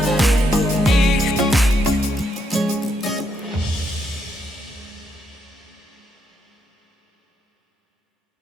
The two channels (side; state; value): both; normal; correlation 0.77